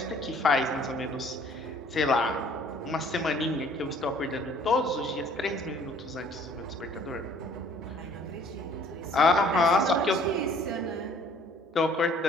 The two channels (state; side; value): normal; both; correlation 0.56